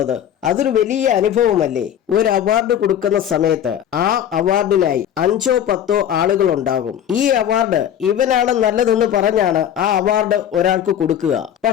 അതൊരു വലിയ അനുഭവമല്ലേ. ഒരു അവാർഡ് കൊടുക്കുന്ന സമയത്ത് ആ അവാർഡിനായി 5 or 10 ആളുകൾ ഉണ്ടാകും. ഈ അവാർഡ് ഇവനാണ് നല്ലതെന്ന് പറഞ്ഞാണ് ആ അവാർഡ് ഒരാൾക്ക് കൊടുക്കുക.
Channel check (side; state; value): right; quieter; 9.9 dB